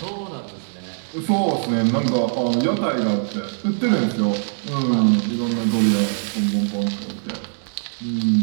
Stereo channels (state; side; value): silent; left; digital silence